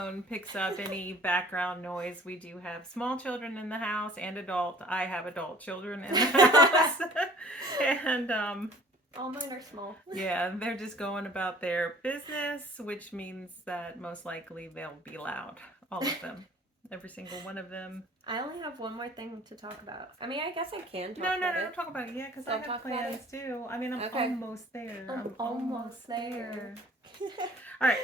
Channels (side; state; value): both; normal; correlation 0.51